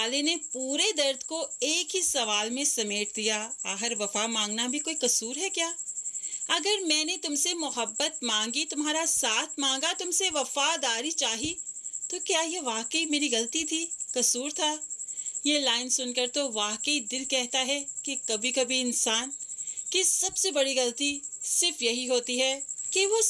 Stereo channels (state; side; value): identical; both; correlation 1.00